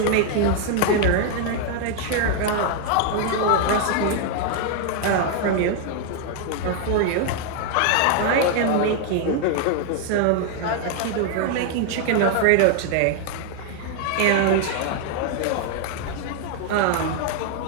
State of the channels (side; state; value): both; different; correlation 0.00